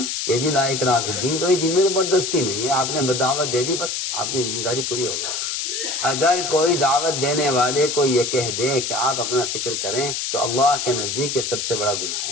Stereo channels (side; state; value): left; noise; hiss, 2 dB below the sound